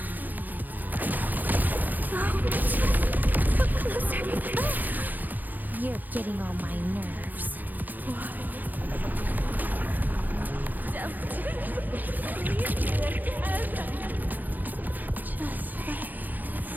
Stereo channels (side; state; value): left; late; 0.085 ms